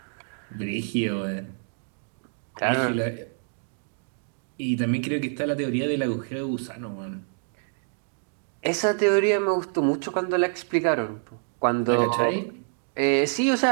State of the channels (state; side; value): silent; left; digital silence